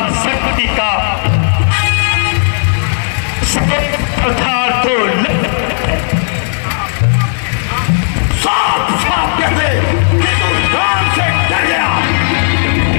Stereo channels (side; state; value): right; silent; digital silence